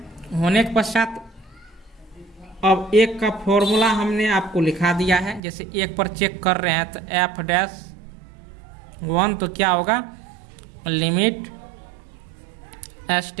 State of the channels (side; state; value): left; drops out; at 5.4 s